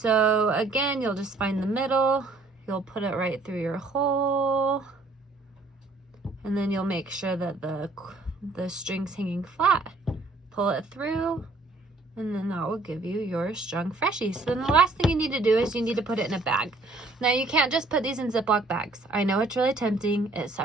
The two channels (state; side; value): quieter; left; 3.3 dB